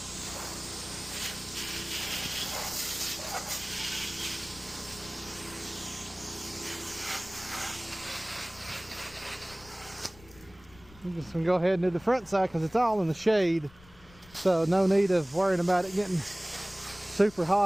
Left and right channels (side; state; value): left; noise; rumble, 22 dB below the sound